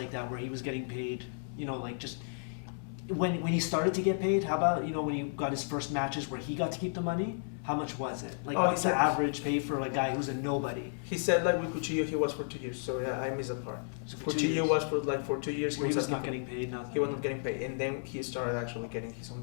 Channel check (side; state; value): right; silent; digital silence